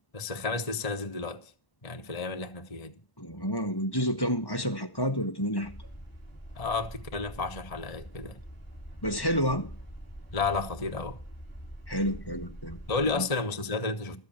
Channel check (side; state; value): right; late; 1.0 ms